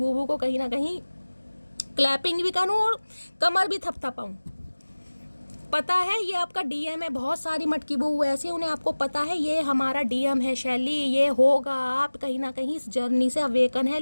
को कहीं ना कहीं क्लैपिंग भी करूँ और कमर भी थपथपाऊँ। पता है ये आपका डीएम है, बहुत सारी मटकी बूबू ऐसी, उन्हें आपको पता है ये हमारा डीएम है शैली, ये होगा, आप कहीं ना कहीं इस जर्नी से अवेकन है,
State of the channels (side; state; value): both; inverted; correlation -1.00